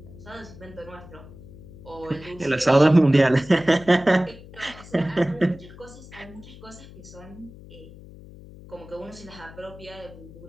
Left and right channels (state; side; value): noise; left; hum, 18 dB below the sound